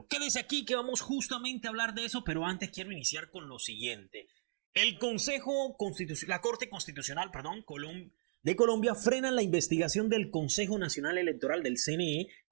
Quédese aquí que vamos justamente a hablar de eso, pero antes quiero iniciar con lo siguiente. El Consejo Constitucional, la Corte Constitucional, perdón, de Colombia frenan la investigación del Consejo Nacional Electoral del CNE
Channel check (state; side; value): silent; left; digital silence